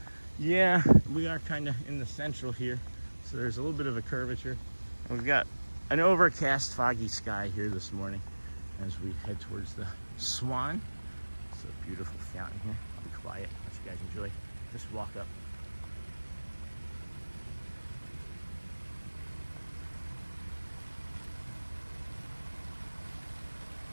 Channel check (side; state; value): both; inverted; correlation -1.00